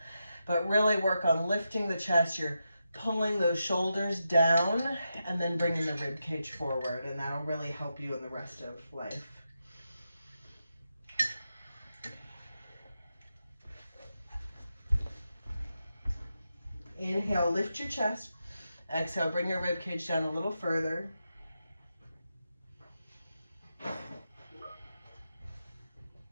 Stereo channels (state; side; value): inverted; both; correlation -0.87